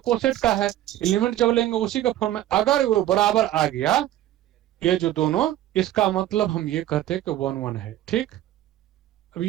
कोसेट का है, एलिमेंट जब लेंगे उसी का फॉर्म में, अगर वो बराबर आ गया ये जो दोनों, इसका मतलब हम ये कहते हैं कि 1 1 है, ठीक।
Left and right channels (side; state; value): left; quieter; 13.5 dB